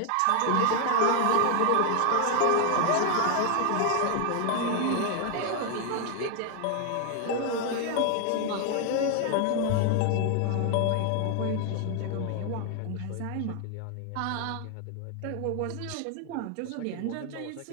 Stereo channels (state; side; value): different; both; correlation 0.00